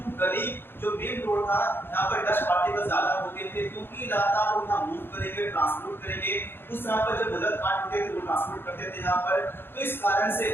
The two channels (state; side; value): late; right; 0.10 ms